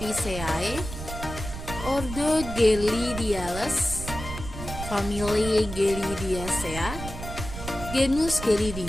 ordo Gelidiales, famili Gelidiacea, genus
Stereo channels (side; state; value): right; noise; rumble, 8 dB below the sound